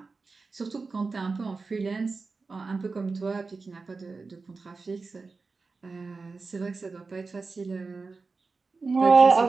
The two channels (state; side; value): quieter; left; 4.2 dB